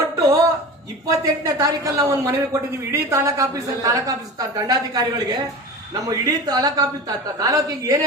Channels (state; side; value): normal; both; correlation 0.32